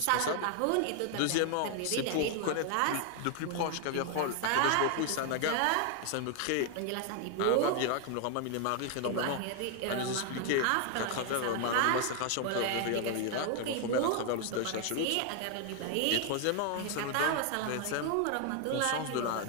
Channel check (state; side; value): different; both; correlation 0.00